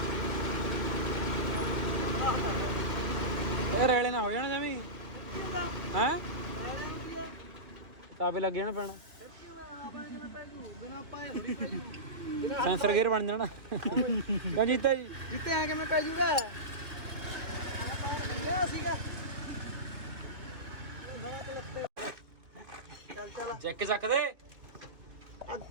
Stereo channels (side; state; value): left; late; 2.7 ms